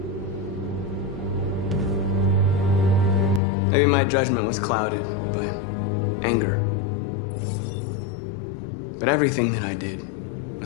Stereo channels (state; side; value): drops out; right; at 3.4 s